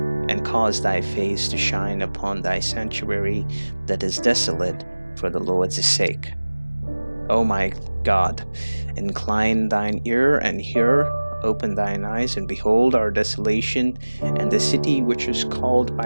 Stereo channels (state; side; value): inverted; both; correlation -1.00